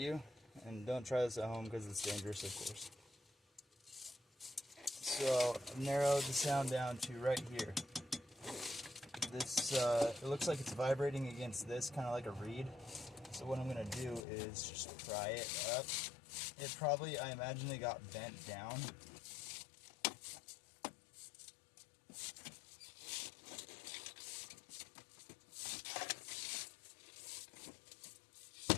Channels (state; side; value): drops out; right; at 14.2 s